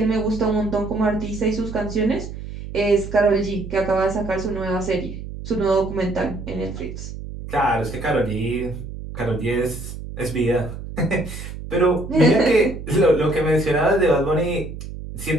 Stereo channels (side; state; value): right; noise; hum, 10 dB below the sound